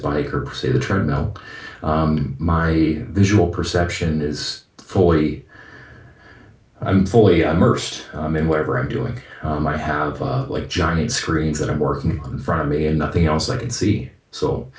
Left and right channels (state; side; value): identical; both; correlation 1.00